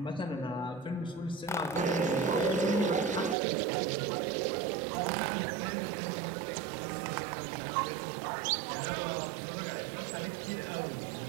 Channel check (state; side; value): drops out; left; at 3.4 s